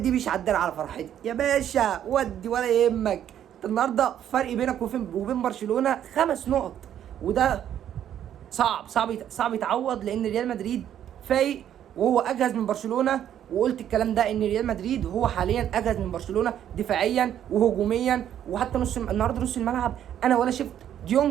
مش عدل على فرحتي يا باشا، ودي ولا يهمك. انت النهارده فرق بينك وبين برشلونه 5 نقط، وده صعب يتعوض، لان ريال مدريد فايق وهو اجهز من برشلونه. وقلت الكلام ده ان ريال مدريد هو حاليا اجهز من برشلونه دفاعيا وهجوميا. وحتى النهارده نص الملعب انا ولا شفت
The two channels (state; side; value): quieter; left; 10.4 dB